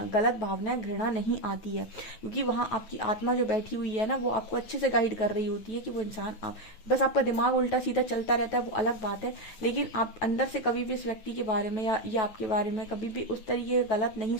गलत भावना घृणा नहीं आती है, क्योंकि वहां आपकी आत्मा जो बैठी हुई है ना वो आपको अच्छे से गाइड कर रही होती है कि वो इंसान, आप बस आपका दिमाग उल्टा सीधा चलता रहता है, वो अलग बात है, लेकिन आप अंदर से कभी भी इस व्यक्ति के बारे में या आपके बारे में कभी भी उस तरीके गलत नहीं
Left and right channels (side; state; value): right; late; 9.2 ms